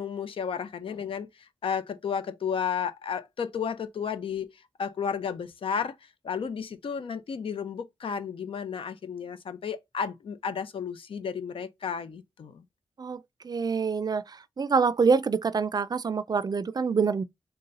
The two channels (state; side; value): normal; both; correlation 0.51